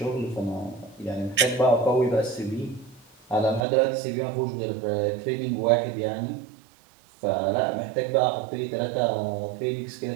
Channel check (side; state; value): left; drops out; at 3.6 s